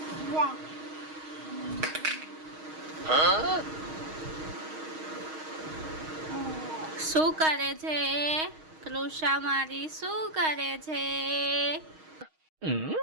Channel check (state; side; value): late; left; 6.4 ms